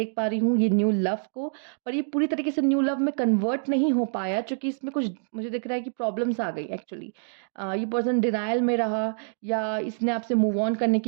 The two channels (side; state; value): left; silent; digital silence